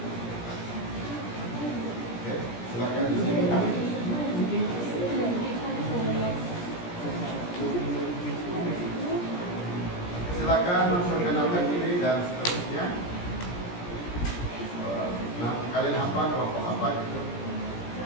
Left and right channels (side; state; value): right; late; 17 ms